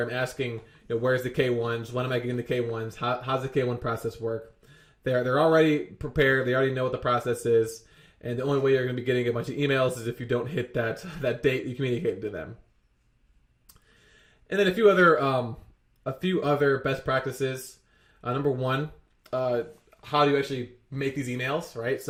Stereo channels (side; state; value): both; identical; correlation 1.00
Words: asking, where's the K1s? When am I getting the K1s? How's the K1 process work? They're already prepared. They already know what the process is. And the only way you're going to be getting a bunch of emails is if you don't hit that date you communicated to them. And then a few other best practices. Number one, how do you actually make these emails, right?